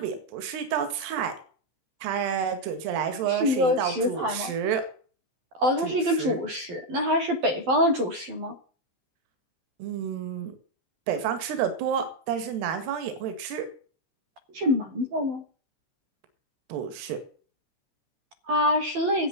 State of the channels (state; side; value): late; left; 12 ms